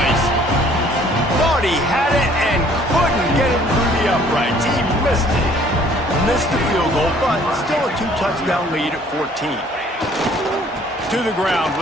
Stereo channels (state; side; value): normal; both; correlation 0.57